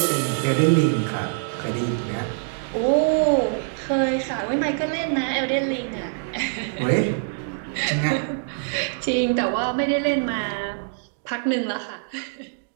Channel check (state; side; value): silent; left; digital silence